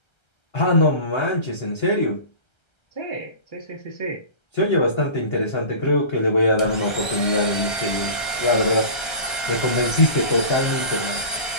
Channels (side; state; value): right; late; 1.3 ms